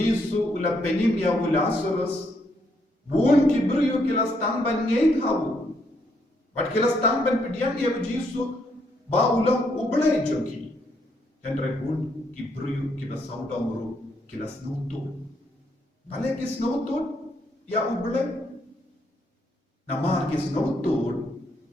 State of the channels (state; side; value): normal; both; correlation 0.74